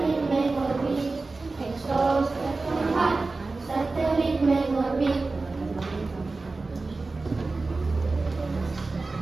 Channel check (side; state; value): left; quieter; 3.6 dB